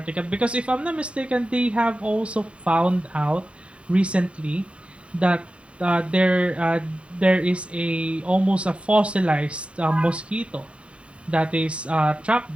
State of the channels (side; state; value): left; late; 0.060 ms